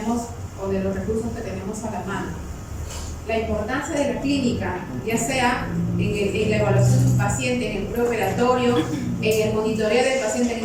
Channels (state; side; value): identical; both; correlation 1.00